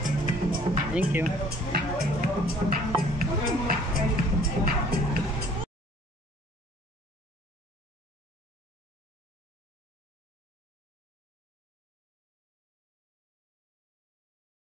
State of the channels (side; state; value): both; normal; correlation 0.54